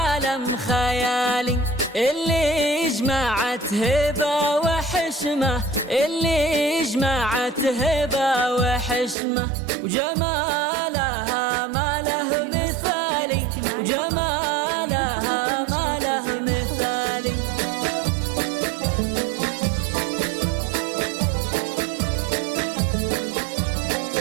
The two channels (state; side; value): drops out; left; at 9.2 s